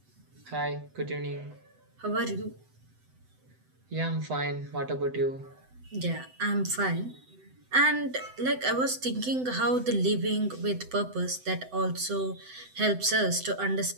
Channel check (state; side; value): late; left; 7.9 ms